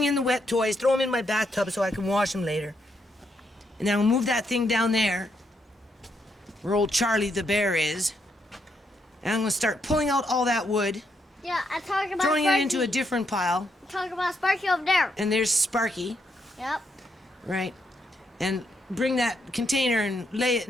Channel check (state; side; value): normal; both; correlation 0.78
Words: in the wet toys. Throw them in my bathtub so I can wash them later. And then I'll move that thing down there, where old Charlie the bear is. And I'm going to start pulling out all that wood, Yeah, I'm talking about throwing Sparky. it into a different pile. I'm talking about Sparky over there. And there's Sparky, Yep. right? And bring that container and lay it